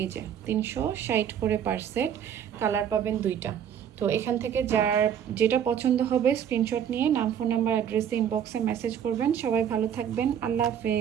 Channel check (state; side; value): quieter; left; 9.0 dB